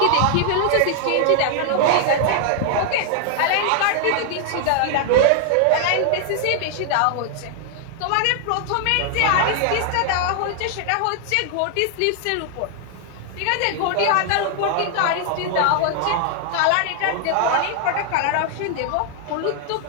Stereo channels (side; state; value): both; different; correlation 0.00